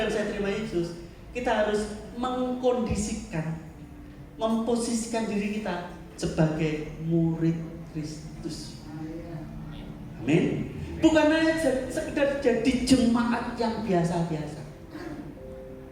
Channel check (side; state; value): both; identical; correlation 1.00